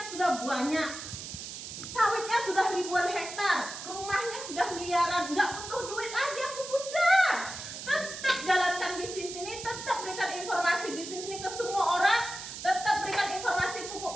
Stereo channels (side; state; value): right; noise; hiss, 9 dB below the sound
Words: sudah banyak, sawitnya sudah ribuan hektar, rumahnya sudah miliaran, nggak butuh duit lagi aku bunda. Tetap jalankan bisnis ini, tetap berikan informasi bisnis ini ke semua orang, tetap berikan informasi pupuk